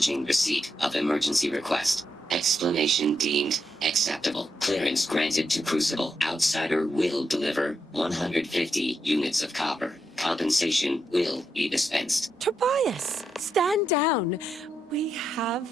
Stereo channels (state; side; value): normal; both; correlation 0.82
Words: receipt of emergency request. Explanation deemed acceptable. Clearance granted to Crucible. Outsider will deliver 150 units of copper. Compensation will be dispensed. Tobias, stand down. We